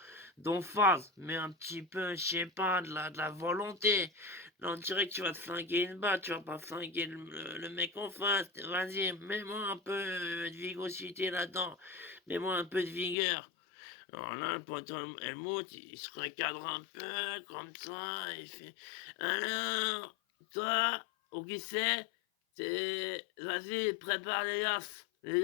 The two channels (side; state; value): right; drops out; at 13.2 s